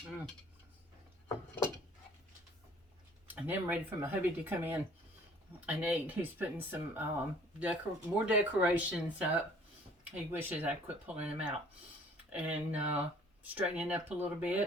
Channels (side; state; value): both; normal; correlation 0.55